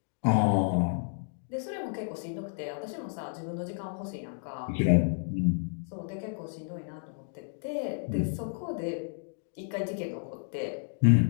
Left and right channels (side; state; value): right; silent; digital silence